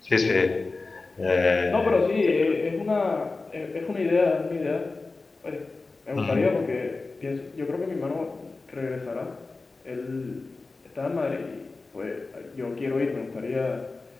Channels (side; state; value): right; quieter; 3.7 dB